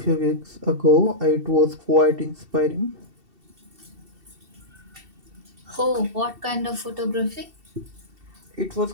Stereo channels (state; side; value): late; left; 2.7 ms